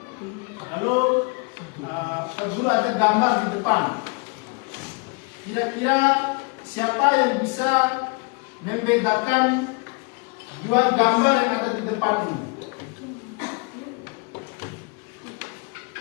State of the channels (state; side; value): quieter; right; 31.9 dB